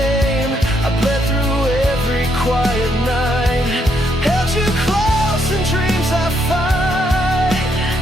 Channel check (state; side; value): normal; both; correlation 0.75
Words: I bled through every quiet night, held you close in dreams I fight.